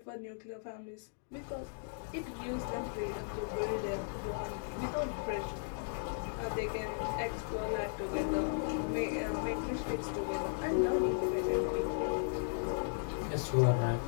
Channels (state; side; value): silent; right; digital silence